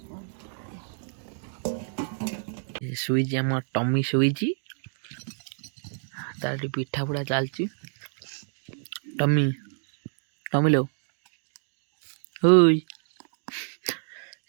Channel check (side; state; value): left; silent; digital silence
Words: ଶୋଇଛି ଆମ ଟମି ଶୋଇଛି ତାର ପିଠା ପୁଡ଼ା ଚାଲିଛି। ଟମି ଟମି लो ହୋଇ